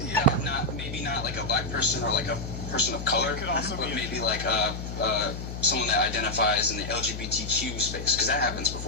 Yeah. Maybe not like a black person or like a person of color, but maybe like someone that identifies in the LGBTQ space, because that happens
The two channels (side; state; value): left; noise; hum, 7 dB below the sound